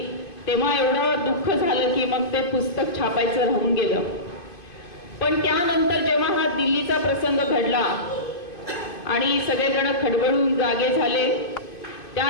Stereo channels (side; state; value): right; late; 2.5 ms